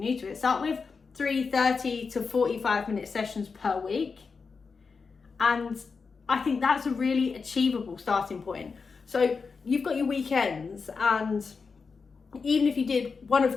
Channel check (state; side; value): quieter; right; 5.0 dB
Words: to it, start with 30 to 45 minute sessions per week, and I think that's a really achievable starting point. So you've got your weekends, and even if you did one